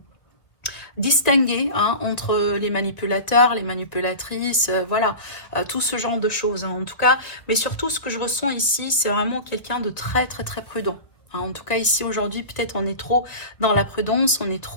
distinguer hein, entre les manipulateurs, les manipulatrices, voilà, tout ce genre de choses. Hein, en tout cas, mais surtout, ce que je ressens ici, c'est vraiment quelqu'un de très, très, très prudent. Hein, en tout cas, ici, aujourd'hui, peut-être on est trop dans la prudence, on est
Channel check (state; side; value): late; right; 1.5 ms